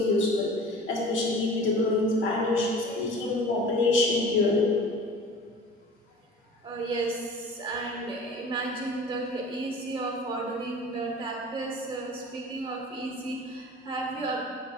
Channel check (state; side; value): normal; both; correlation 0.41